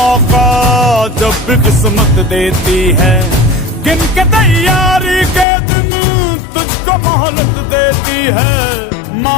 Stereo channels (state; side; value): drops out; right; at 5.5 s